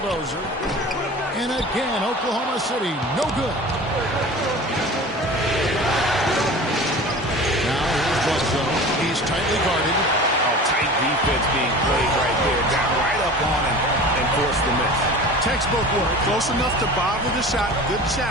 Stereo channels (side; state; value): both; normal; correlation 0.38